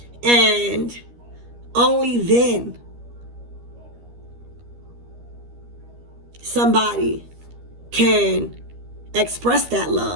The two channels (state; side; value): late; left; 13 ms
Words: And only then somebody can express that